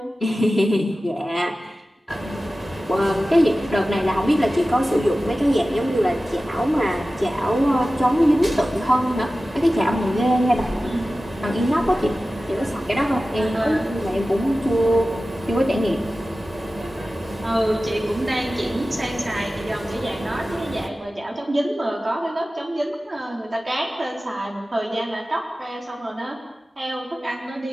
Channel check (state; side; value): normal; both; correlation 0.95